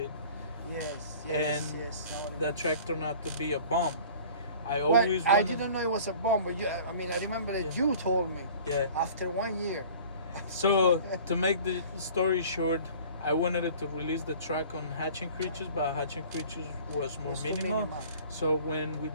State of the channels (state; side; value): inverted; both; correlation -0.46